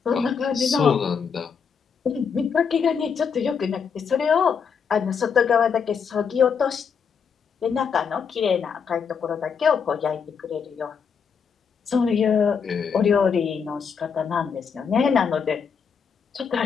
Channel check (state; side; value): quieter; right; 6.3 dB